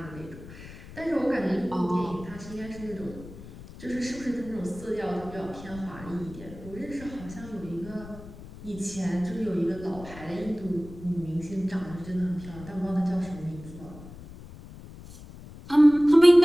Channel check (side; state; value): left; noise; rumble, 16 dB below the sound